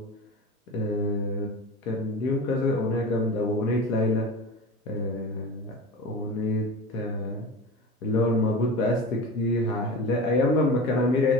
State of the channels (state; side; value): normal; both; correlation 0.31